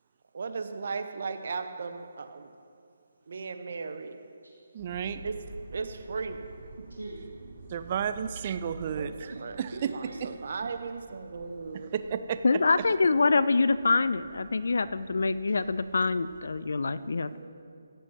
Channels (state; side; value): inverted; both; correlation -0.88